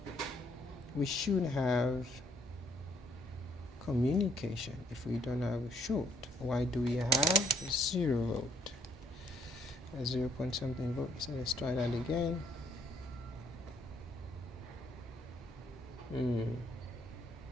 we should have communication if we don't have a short. Why do we have 0 volt? 0 point something volt. So let's try that again.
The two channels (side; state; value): both; normal; correlation 0.68